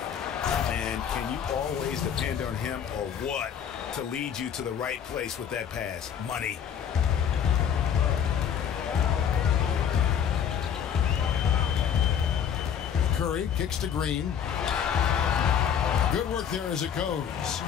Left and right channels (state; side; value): quieter; right; 8.2 dB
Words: And can you always depend on him or what to lead you to the right place with that pass? Money. Curry kicks to Green. Good work there as it goes.